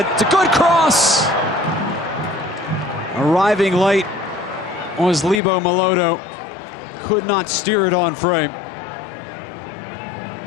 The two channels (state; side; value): drops out; right; at 5.4 s